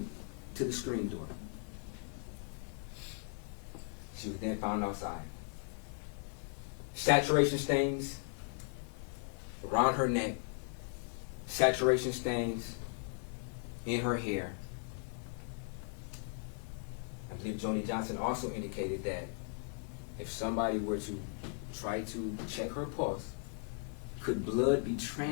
to the screen door. She was then found outside. Saturation stains around her neck, saturation stains in her hair. I believe Joni Johnson also indicated that if somebody were to try to check her pulse, could blood be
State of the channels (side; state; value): right; silent; 53 dB below the other